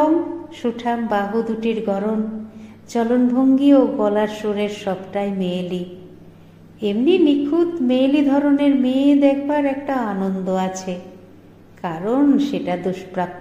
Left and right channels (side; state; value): both; identical; correlation 1.00